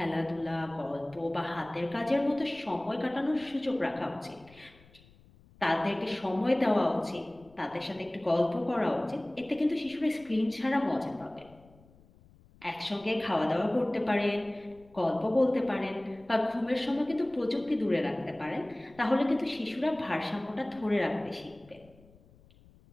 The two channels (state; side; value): noise; left; rumble, 26 dB below the sound